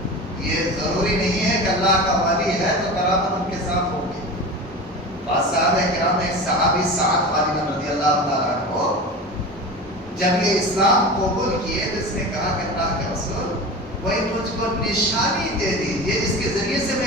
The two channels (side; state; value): both; normal; correlation 0.31